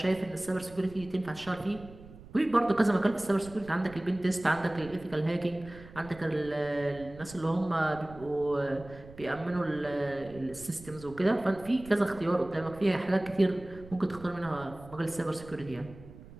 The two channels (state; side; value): noise; right; rumble, 18 dB below the sound